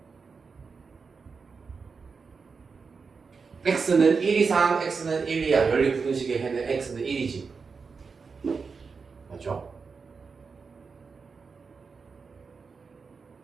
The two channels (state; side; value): quieter; left; 5.0 dB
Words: x는 1 이상, x는 1 이하. 연립 부등식의 해는 x는 1이지. 맞죠?